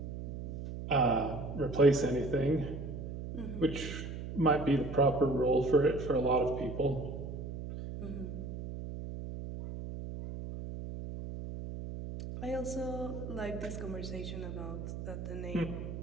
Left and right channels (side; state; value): right; noise; hum, 7 dB below the sound